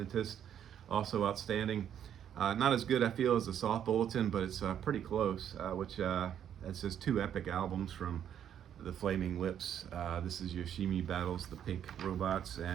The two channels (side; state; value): left; quieter; 9.5 dB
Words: also outstanding. Not as good, I feel, as the Soft Bulletin, but it's pretty close, which that's just 2 epic albums from the Flaming Lips. This is Yoshimi Battles the Pink Robots,